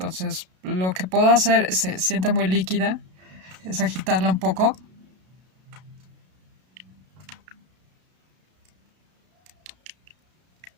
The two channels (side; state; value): left; late; 32 ms